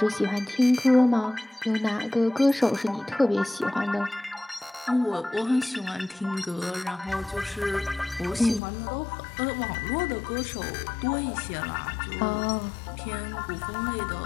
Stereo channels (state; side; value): drops out; right; at 8.6 s